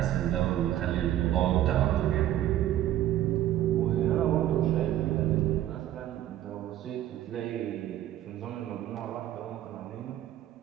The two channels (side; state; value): left; quieter; 12.8 dB